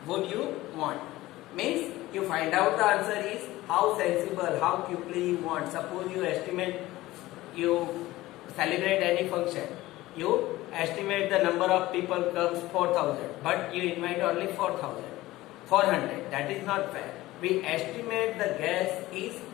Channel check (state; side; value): quieter; right; 17.5 dB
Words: would you want. Means you find out the answer is how sensible, how quickly you want. Suppose you estimate, you celebrate any function, you estimate the number of people comes 4000, but you invite only 400. That is not fair. We estimate the guess is